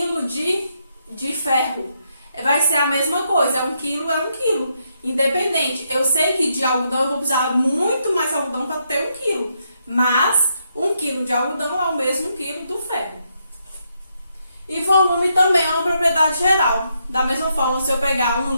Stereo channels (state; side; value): inverted; both; correlation -0.78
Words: de ferro. Vai ser a mesma coisa, 1 quilo é 1 quilo. Independente, eu sei que de algodão eu vou precisar muito mais algodão para ter 1 quilo, mas 1 quilo de algodão é o mesmo quilo do ferro. E volume também é uma propriedade geral. Da mesma forma, se eu pegar 1